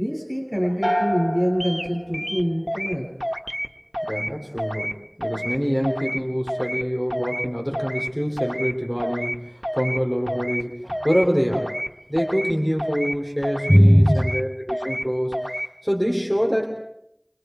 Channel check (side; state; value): both; identical; correlation 1.00